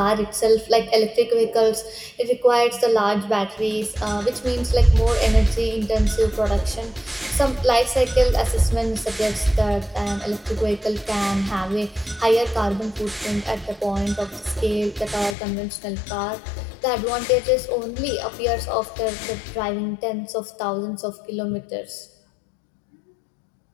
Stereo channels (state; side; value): drops out; right; at 15.4 s